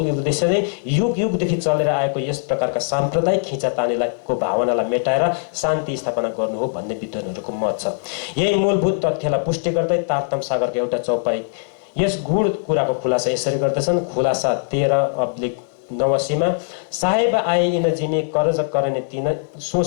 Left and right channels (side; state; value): right; silent; digital silence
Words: उद्देश्य नै युगदेखि चलेर आएको यस प्रकारका साम्प्रदायिक खिचातानीको भावनालाई मेटाएर शान्ति स्थापना गर्नु हो भन्ने विद्वानहरूको मत छ। यही मूलभूत तथ्यलाई पुष्टि गर्दै तारतम सागरको एउटा चौपाई यस गूढ कुराको खुलासा यसरी गर्दछन्। खुलासा 13/89 साहेब आए इन जिने करज करने तीन, सो